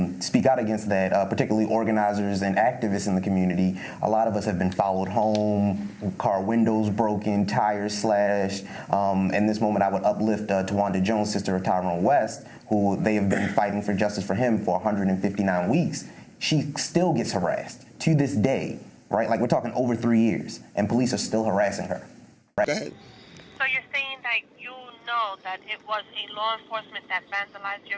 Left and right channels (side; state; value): both; identical; correlation 1.00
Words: speak out against that, particularly organizers and activists in the community. A lot of us have been followed home, car windows broken, tires slashed. In this moment, I would uplift Tawanda Jones, sister of Tyrone West, who they have been fighting for justice for him for 159 weeks. She still gets harassed to this day, right? Like, we're talking over 3 years, and police are still harassing her. Right? Go ahead. So you're saying that you know that it was a law enforcement that vandalized